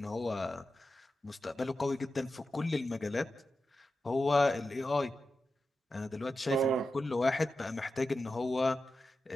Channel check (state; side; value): normal; both; correlation 0.91